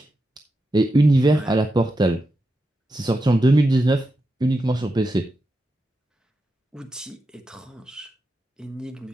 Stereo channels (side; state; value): both; normal; correlation 0.88